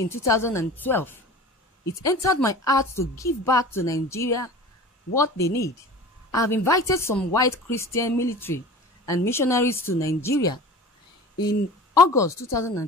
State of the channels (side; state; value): both; normal; correlation 0.38